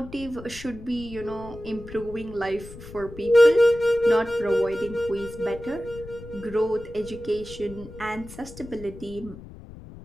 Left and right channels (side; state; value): left; noise; rumble, 15 dB below the sound